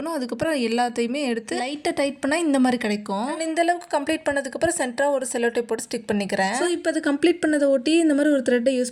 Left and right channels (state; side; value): identical; both; correlation 1.00